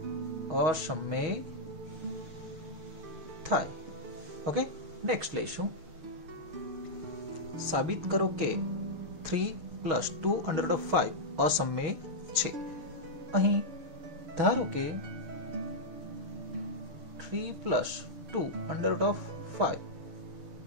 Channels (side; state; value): left; late; 6.3 ms